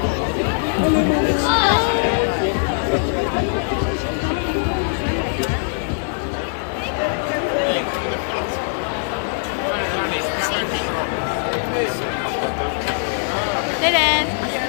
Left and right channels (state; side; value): silent; right; digital silence